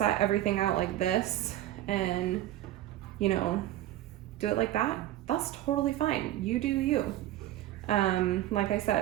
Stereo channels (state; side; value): quieter; left; 14.0 dB